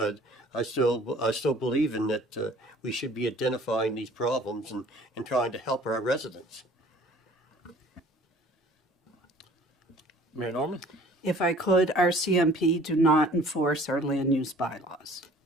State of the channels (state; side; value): normal; both; correlation 0.51